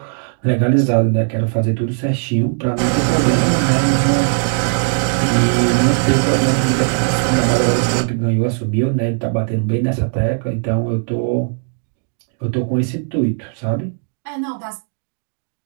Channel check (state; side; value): silent; left; 61 dB below the other